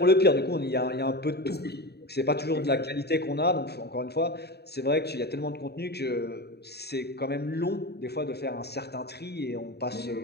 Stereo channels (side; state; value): right; late; 0.48 ms